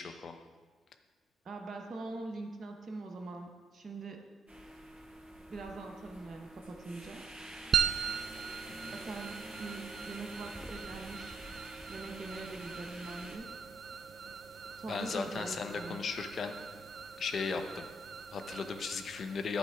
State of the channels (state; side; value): normal; both; correlation 0.74